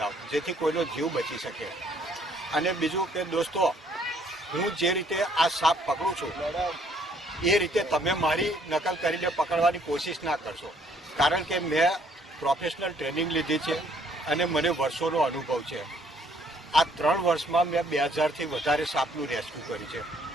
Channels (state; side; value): normal; both; correlation 0.64